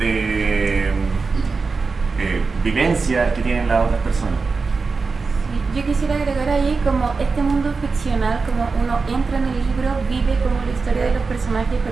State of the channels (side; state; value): left; quieter; 4.5 dB